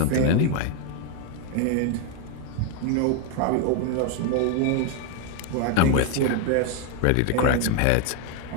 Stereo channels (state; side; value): different; both; correlation 0.01